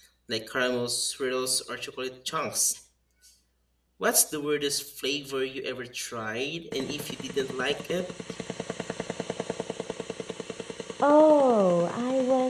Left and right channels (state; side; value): identical; both; correlation 1.00